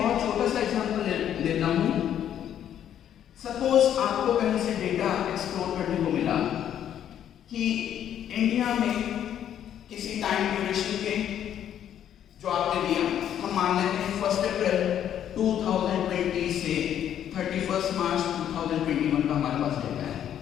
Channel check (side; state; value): right; quieter; 10.1 dB